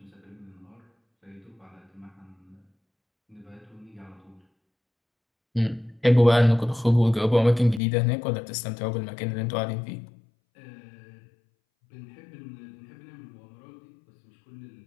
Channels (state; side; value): drops out; right; at 7.8 s